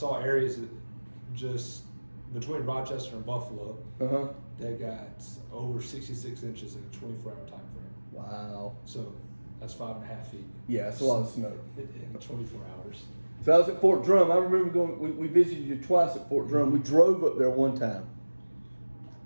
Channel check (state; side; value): inverted; both; correlation -1.00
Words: areas that just between Rochester and Buffalo Uh-huh. that got over 66 inches in a 24-hour time frame. Wow. So That's 5.5 feet. Yeah, that's a lot of snow. In 24 hours. So I was at Fort Drum. I remember going. We visited you twice at Fort Drum. We drove up there one time.